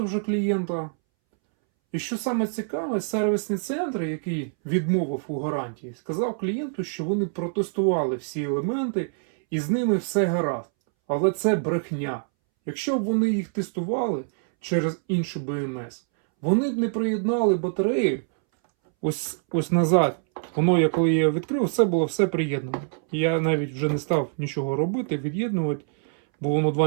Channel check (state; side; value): silent; left; 62 dB below the other